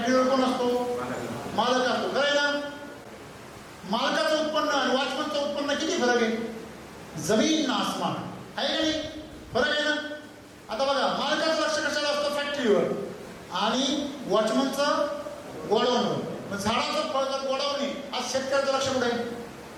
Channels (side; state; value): both; identical; correlation 1.00